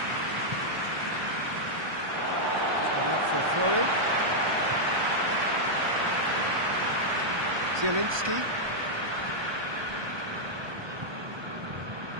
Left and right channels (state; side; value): late; left; 1.2 ms